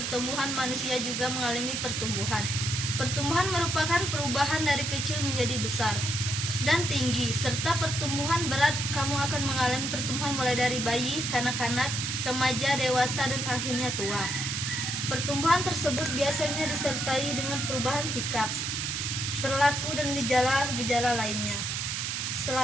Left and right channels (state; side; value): noise; right; hiss, 2 dB below the sound